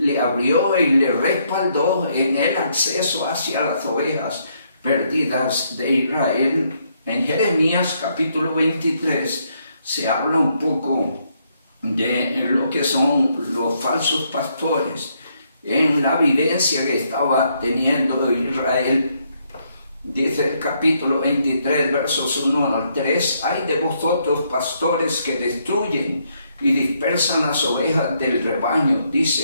abrió y le respaldó en el acceso hacia las ovejas perdidas de Israel. En Jeremías capítulo 23 se habla un poco de lo que son los falsos pastores en la vivencia que estaba teniendo Israel. Dice el capítulo 23, versos 1 al 3, hay de vosotros pastores que destruyen y dispersan las ovejas del rebaño,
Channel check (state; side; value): inverted; both; correlation -0.74